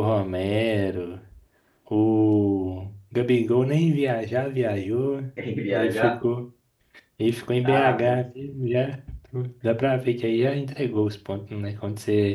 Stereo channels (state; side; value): identical; both; correlation 1.00